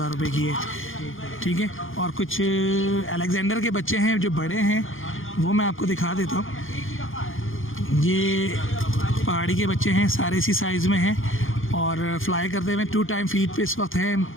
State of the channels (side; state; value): right; late; 0.59 ms